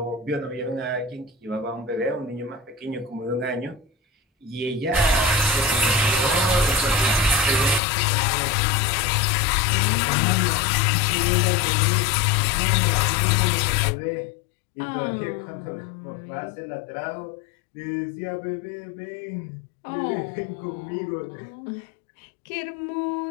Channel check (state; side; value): drops out; right; at 7.8 s